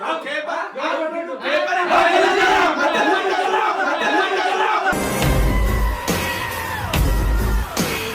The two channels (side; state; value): both; identical; correlation 1.00